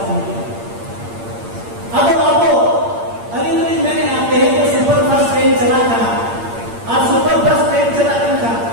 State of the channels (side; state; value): left; late; 8.7 ms